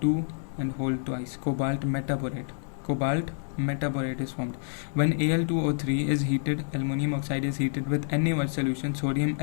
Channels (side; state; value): right; silent; 55 dB below the other